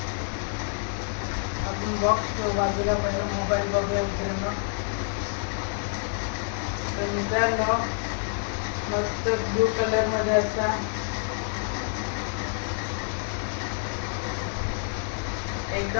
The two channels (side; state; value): right; silent; 60 dB below the other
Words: आपण बॉक्स बाजूला पहिला मोबाईल बघूया मित्रांनो. तर मित्रांनो, मस्त ब्लू कलर मध्ये असा